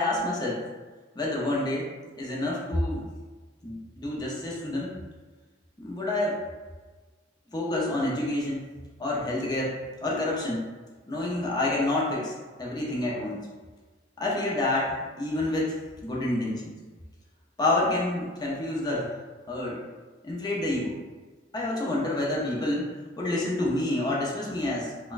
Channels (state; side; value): normal; both; correlation 0.45